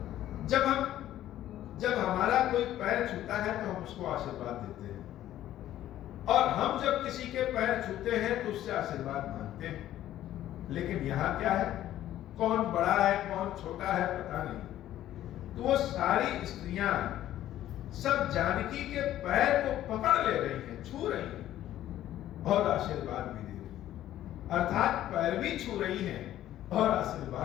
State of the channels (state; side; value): quieter; right; 12.9 dB